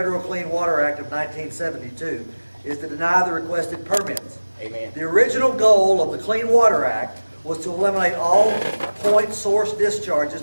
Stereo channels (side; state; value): both; inverted; correlation -1.00